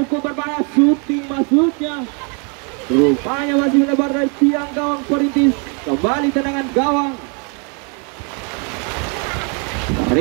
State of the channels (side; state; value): left; quieter; 36.6 dB